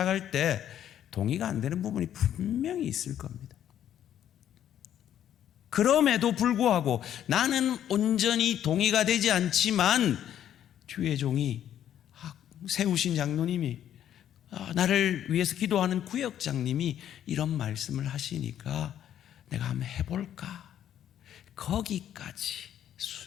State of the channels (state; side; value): quieter; right; 10.6 dB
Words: 때 동의가 안 되는 부분이 분명히 있을 겁니다. 그럼에도 불구하고 나는 온전히 동의가 되지 않지만 주의 종이 세우신 장로님이 나를 위해서 기도하는 구역장님이 이런 말씀을 하시니까 내가 한번 해볼까, 거기까지